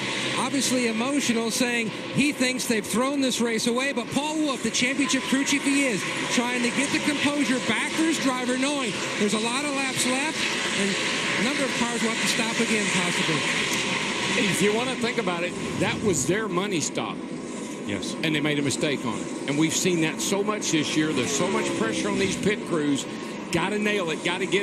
Obviously emotional, saying he thinks they've thrown this race away. But Paul Wolf, the championship crew chief he is, trying to get the composure back for his driver, knowing there's a lot of laps left and a number of cars will have to stop again, possibly. If you want to think about it, that was their money stop. Yes. And they made a mistake on it. And we've seen that so much this year. There's so much pressure on these pit crews. Got to nail it. Got to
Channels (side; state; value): both; identical; correlation 1.00